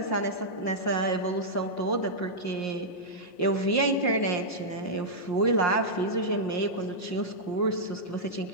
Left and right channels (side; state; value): right; late; 5.6 ms